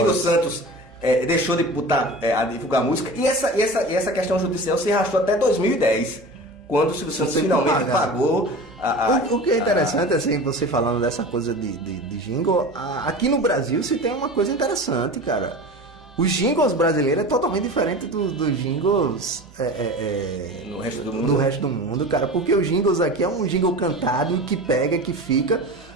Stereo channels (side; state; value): both; normal; correlation 0.34